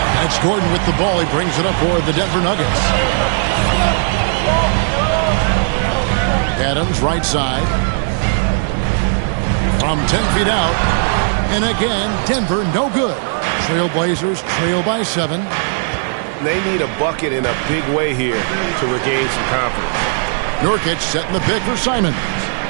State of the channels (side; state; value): left; silent; 68 dB below the other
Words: And it's Gordon with the ball. He brings it up for the Denver Nuggets. Adams right side. From 10 feet out. And again, Denver no good. Trailblazers trail by 7. They need a bucket in a big way here to regain some confidence. Nurkic setting the pick for Simons.